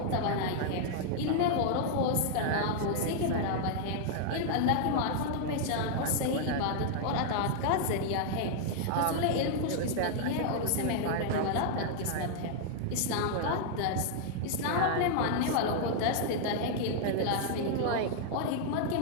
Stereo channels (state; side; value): different; both; correlation 0.00